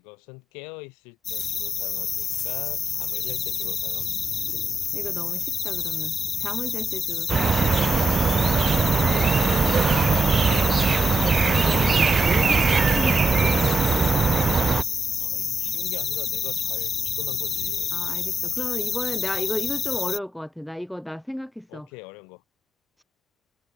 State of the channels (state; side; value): normal; both; correlation 0.82